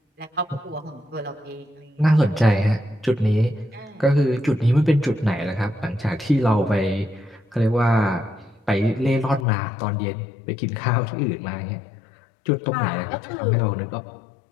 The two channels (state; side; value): drops out; right; at 9.5 s